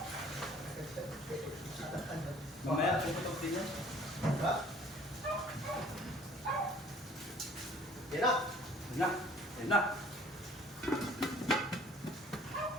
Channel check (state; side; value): normal; both; correlation 0.54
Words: Mamaya, puputok din yan. Diba? Yan na. Yan na. Yan na.